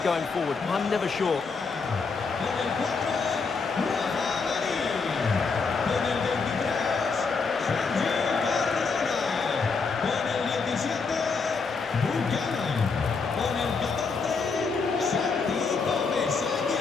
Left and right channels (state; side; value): quieter; right; 4.8 dB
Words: going forward? I'm never sure.